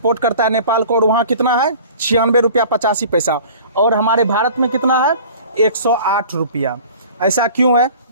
करता है नेपाल को, और वहाँ कितना है? 96 रुपया 85 पैसा, और हमारे भारत में कितना है? 108 रुपया। ऐसा क्यों है?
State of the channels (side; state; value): both; inverted; correlation -0.45